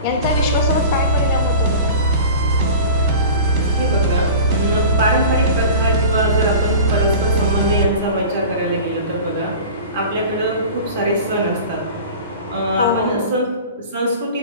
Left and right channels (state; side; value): inverted; both; correlation -0.37